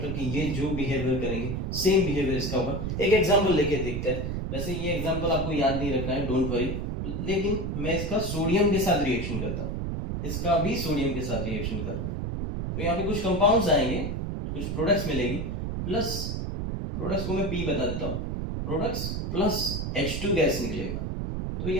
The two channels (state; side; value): noise; right; rumble, 3 dB below the sound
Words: कि ये जो बिहेवियर करेंगे सेम बिहेवियर इसका होगा। एक एग्जांपल लेके देखते हैं। वैसे ये एग्जांपल आपको याद नहीं रखना है, डोंट वरी, लेकिन मैं इसका सोडियम के साथ रिएक्शन करता हूँ, इसका भी सोडियम के साथ रिएक्शन कर रहा हूँ, तो यहाँ पे कुछ कंपाउंड्स आएंगे, कुछ प्रोडक्ट्स मिलेगी, प्लस प्रोडक्ट्स को मैं P बता देता हूँ, प्रोडक्ट्स प्लस H2 गैस निकलेगा, तो